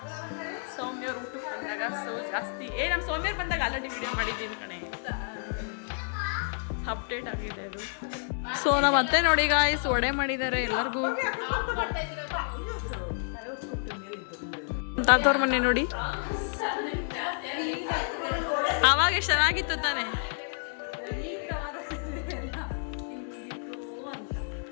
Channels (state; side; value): silent; right; digital silence